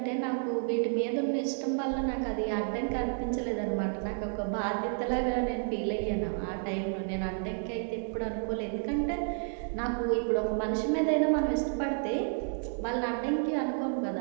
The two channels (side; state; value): left; silent; 57 dB below the other